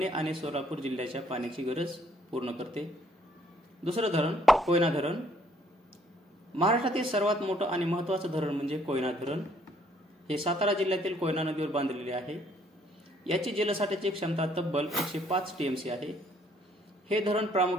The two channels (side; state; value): both; normal; correlation 0.65